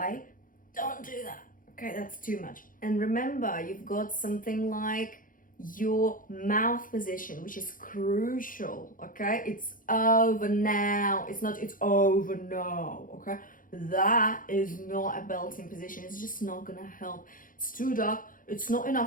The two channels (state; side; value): late; right; 0.40 ms